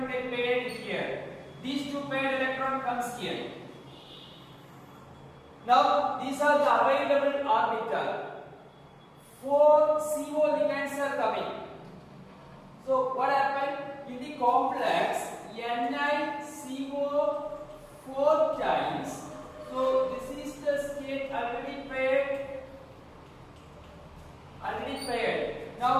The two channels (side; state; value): both; identical; correlation 1.00